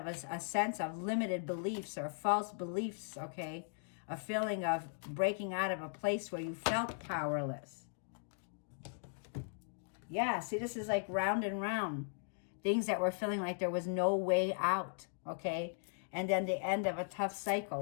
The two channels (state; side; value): silent; right; digital silence